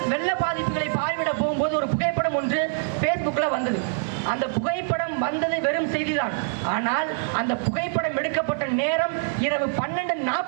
வெள்ள பாதிப்புகளை பார்வையிட போகும்போது ஒரு புகைப்படம் ஒன்று Facebookல வந்தது. அந்த புகைப்படம் வந்தது வெறும் செய்திதான். ஆனால் அந்த புகைப்படம் எடுக்கப்பட்ட நேரம் இரவு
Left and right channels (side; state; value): left; silent; digital silence